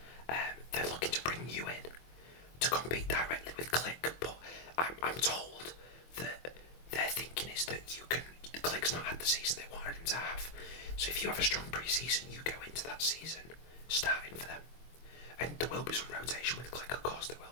They're looking to bring you in to compete directly with Click, but I'm told that their thinking is that the Click's not had the season they wanted him to have. So if you have a strong pre-season, you go into that season starting for them. And there will be some rotation with Click, of course there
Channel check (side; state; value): right; late; 24 ms